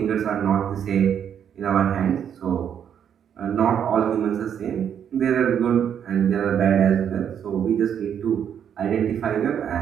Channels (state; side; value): quieter; left; 8.6 dB